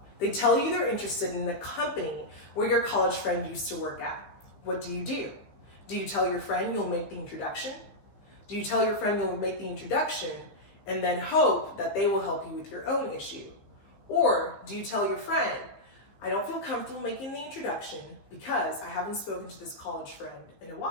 They tell you they're interested in the company where your college friend used to work at. What do? Do you tell your friend you'll make the introduction? Do you tell your friend you'll make the introduction and then hope that they will help you with your own issue? Or do you tell your friend, I don't feel comfortable making the introduction because I haven't spoken to this college friend in a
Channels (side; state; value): right; late; 15 ms